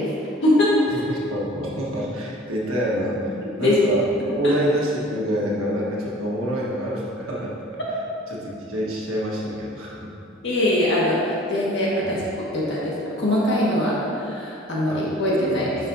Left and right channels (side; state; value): both; normal; correlation 0.48